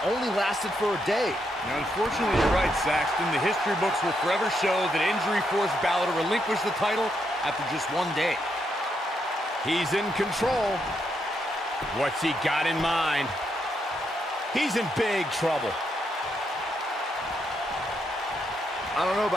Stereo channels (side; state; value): both; normal; correlation 0.79